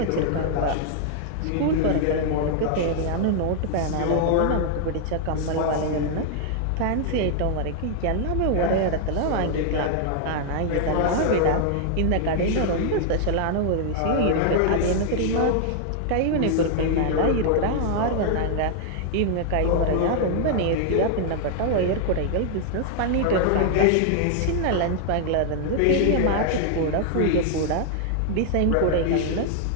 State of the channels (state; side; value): different; both; correlation -0.01